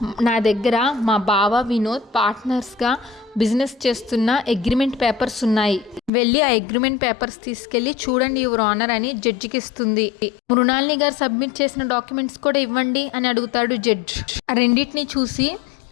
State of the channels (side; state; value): right; drops out; at 6.1 s